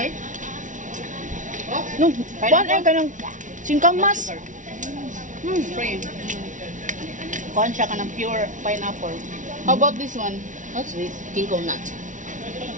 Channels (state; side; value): late; left; 0.37 ms